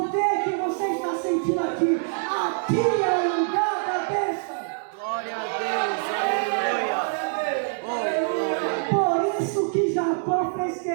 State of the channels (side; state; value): left; silent; 62 dB below the other